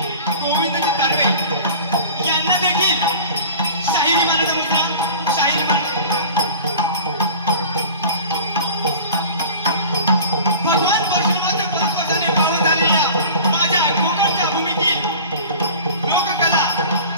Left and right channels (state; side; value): inverted; both; correlation -0.40